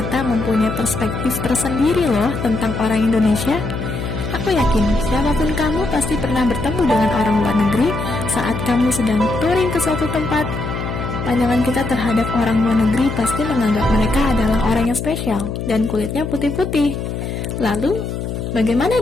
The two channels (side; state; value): left; noise; hum, 5 dB below the sound